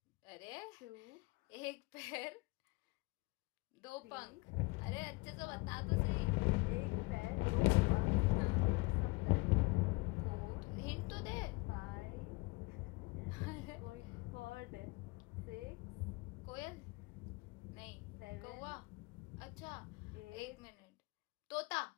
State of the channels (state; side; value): quieter; right; 25.1 dB